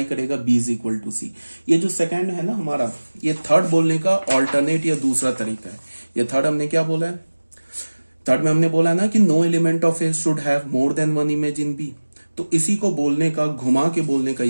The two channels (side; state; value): both; inverted; correlation -1.00